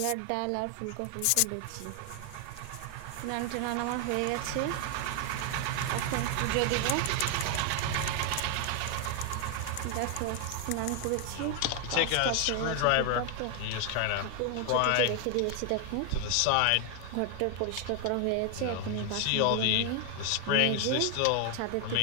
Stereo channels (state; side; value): different; both; correlation 0.00